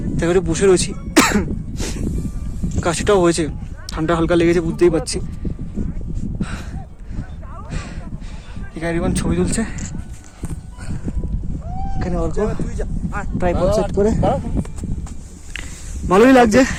তাই করে বসে রয়েছি। কাশিটাও হয়েছে, ঠান্ডা হালকা লেগেছে, বুঝতেই পারছি। এখানে ছবি তুলছে, এখানে অল্প ট্রাইপড সেট করে ভালোই লাগছে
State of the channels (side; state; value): both; identical; correlation 1.00